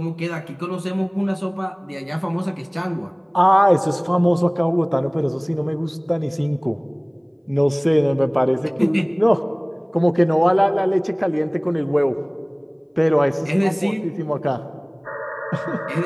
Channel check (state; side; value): identical; both; correlation 1.00